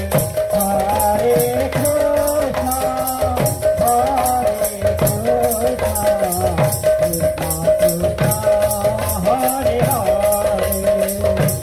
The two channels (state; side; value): identical; both; correlation 1.00